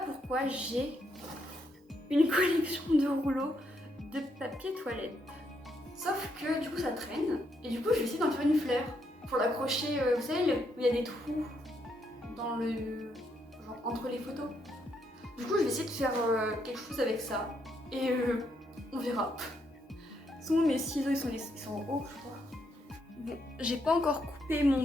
j'ai une collection de rouleaux de papier toilette. Sauf que du coup ça traîne et du coup je vais essayer d'en faire une fleur pour l'accrocher, vous savez où il y a des trous dans le genre entre les photos. Du coup, je vais essayer de faire quelque chose avec ça. Et on verra. Sinon, mes ciseaux, ils sont en haut, je crois. Bon, j'ai pas encore coupé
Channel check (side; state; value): both; normal; correlation 0.76